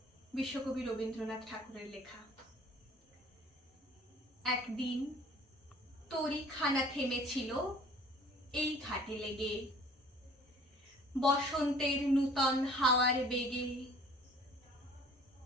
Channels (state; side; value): normal; both; correlation 0.51